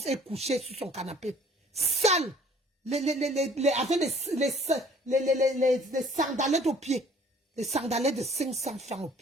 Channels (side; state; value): both; normal; correlation 0.55